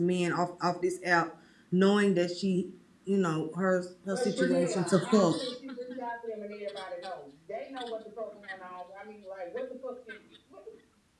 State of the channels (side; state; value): both; identical; correlation 1.00